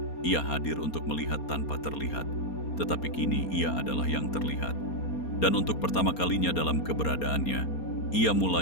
Ia hadir untuk melihat tanpa terlihat, tetapi kini ia adalah yang terlihat. Dan untuk pertama kalinya dalam keberadaannya, ia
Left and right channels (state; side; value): late; right; 4.3 ms